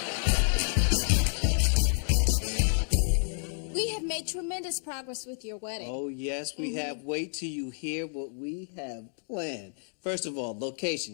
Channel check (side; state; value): right; silent; digital silence